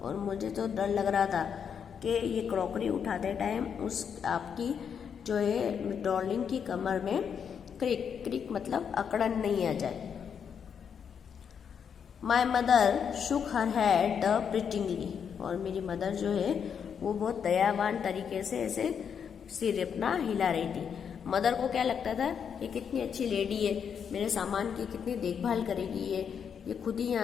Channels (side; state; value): right; quieter; 7.3 dB